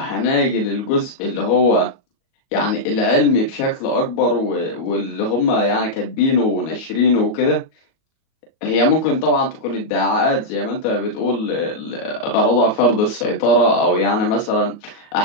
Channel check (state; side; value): late; right; 37 ms